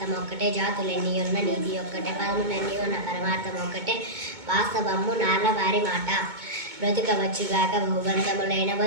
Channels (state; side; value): late; left; 2.2 ms